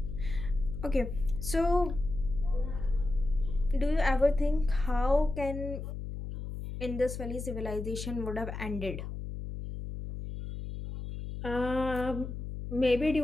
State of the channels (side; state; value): left; noise; hum, 7 dB below the sound